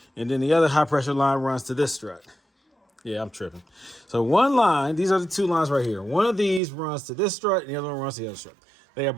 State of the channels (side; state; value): left; drops out; at 6.6 s